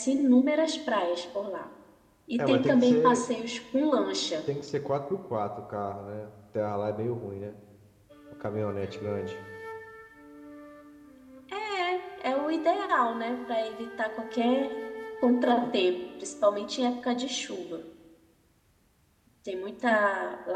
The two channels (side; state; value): both; identical; correlation 1.00